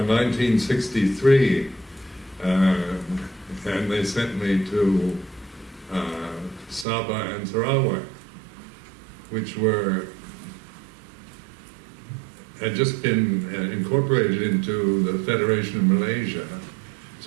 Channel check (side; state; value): left; drops out; at 6.9 s